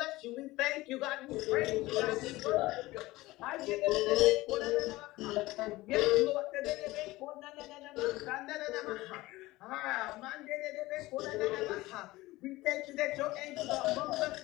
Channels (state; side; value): quieter; right; 19.1 dB